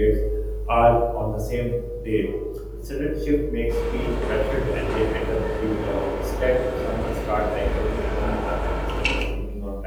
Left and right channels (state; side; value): identical; both; correlation 1.00